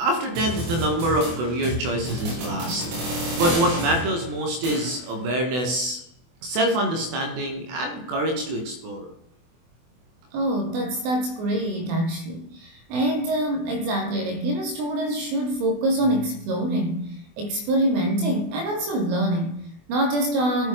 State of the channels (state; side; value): late; left; 24 ms